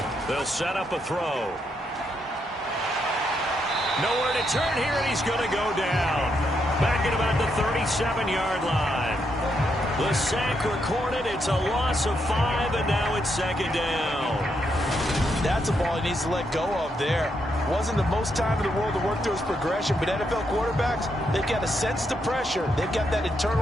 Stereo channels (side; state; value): both; normal; correlation 0.79